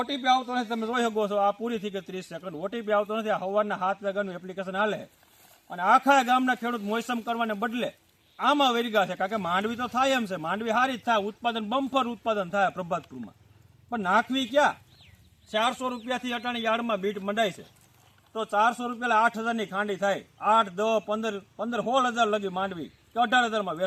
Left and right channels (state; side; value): identical; both; correlation 1.00